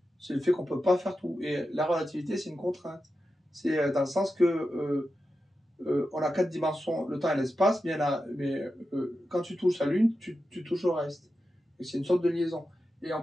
C'est le fait qu'on peut pas faire tout. Et la relativité, c'est une contrainte. C'est dans le sens que on a 4 dimensions, le temps et l'espace, mais quand tu touches la Lune, tu touches au reste. Et c'est une sorte de liaison. Et on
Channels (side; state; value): both; normal; correlation 0.90